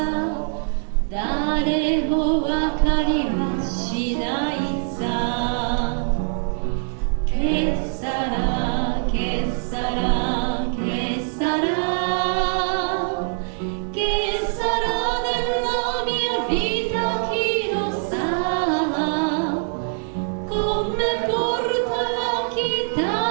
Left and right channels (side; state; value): left; silent; 63 dB below the other